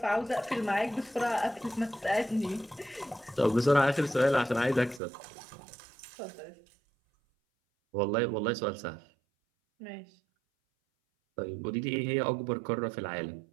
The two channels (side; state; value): left; drops out; at 5.0 s